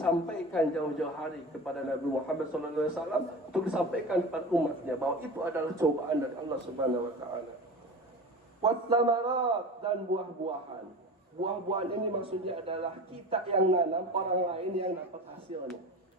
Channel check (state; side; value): normal; both; correlation 0.32